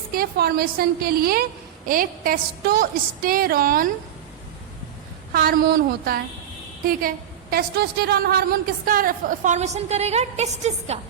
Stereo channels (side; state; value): left; quieter; 10.0 dB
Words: के फॉर्मेशन के लिए एक टेस्टोस्टेरॉन हार्मोन होता है। ठीक है, टेस्टोस्टेरॉन हार्मोन किसका फॉर्मेशन करेगा? टेस्टिस का।